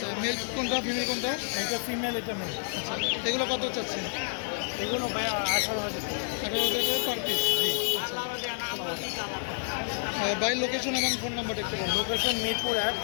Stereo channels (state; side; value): silent; right; digital silence